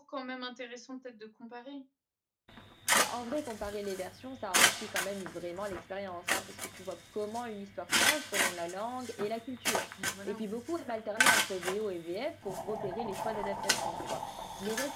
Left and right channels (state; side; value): identical; both; correlation 1.00